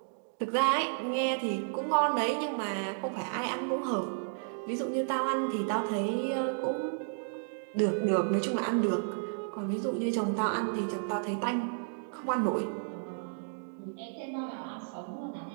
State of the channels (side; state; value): left; silent; digital silence